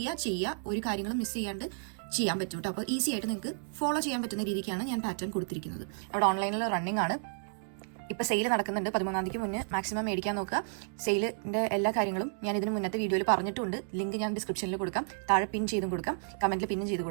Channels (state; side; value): silent; left; digital silence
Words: ചെയ്യുക, ഒരു കാര്യങ്ങളും മിസ് ചെയ്യാണ്ട് ചെയ്യാൻ പറ്റും കേട്ടോ. അപ്പോൾ ഈസി ആയിട്ട് നിങ്ങൾക്ക് ഫോളോ ചെയ്യാൻ പറ്റുന്ന രീതിക്കാണ് ഞാൻ പാറ്റേൺ കൊടുത്തിരിക്കുന്നത്. അവിടെ ഓൺലൈനിൽ റണ്ണിങ് ആണ്. ഇപ്പോൾ സെയിൽ നടക്കുന്നുണ്ട്. 13-ാം തീയതിക്ക് മുന്നേ മാക്സിമം മേടിക്കാൻ നോക്കുക. സെയിലിൻ്റെ എല്ലാ കാര്യങ്ങളും ഞാൻ ഇതിന് മുന്നത്തെ വീഡിയോയിൽ പറഞ്ഞിട്ടുണ്ട്. ലിങ്ക് ഞാൻ ഡിസ്ക്രിപ്ഷനിൽ കൊടുക്കാം, താഴെ പിൻ ചെയ്തും കൊടുക്കാം, കമൻറ്റിൽ പിന്നും ചെയ്ത്